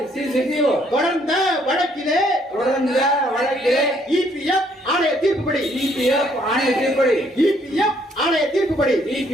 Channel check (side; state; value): both; normal; correlation 0.67